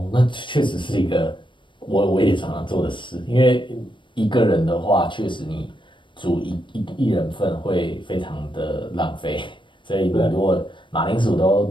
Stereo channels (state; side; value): late; right; 0.24 ms